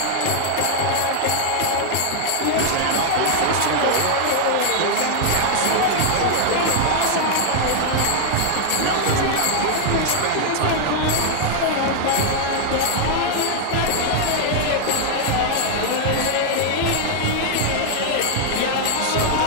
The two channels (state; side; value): different; both; correlation 0.00